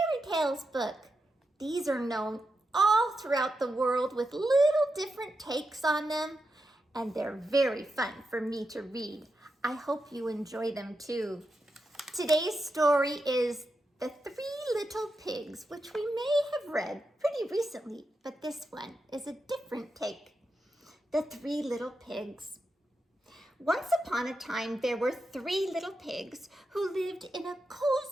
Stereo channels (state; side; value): normal; both; correlation 0.87